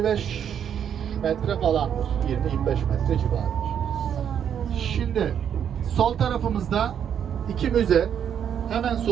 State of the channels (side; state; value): left; quieter; 8.7 dB